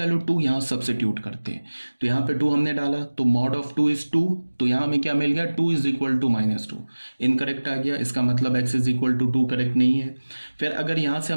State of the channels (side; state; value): both; inverted; correlation -1.00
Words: 2 यहाँ सब्सिट्यूट करते हैं, तो यहाँ पे 2 हमने डाला, तो मॉड ऑफ 2 इज 2, तो यहाँ हमें क्या मिल गया, 2 इज इक्वल टू -2। इनकरेक्ट आ गया, इसका मतलब x is equal to 2 correct नहीं है। फिर अगर यहाँ से